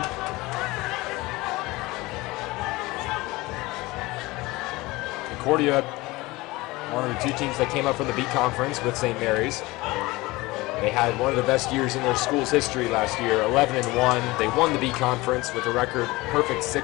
Concordia, one of the 2 teams that came up from the B conference with St. Mary's. They had one of the best years in their school's history last year, 11-1. They won the B conference with a record perfect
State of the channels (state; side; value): quieter; right; 21.2 dB